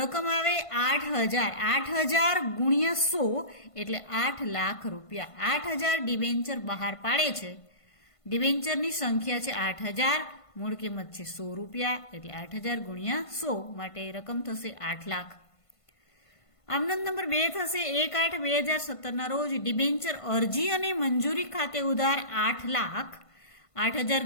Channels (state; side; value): late; right; 1.5 ms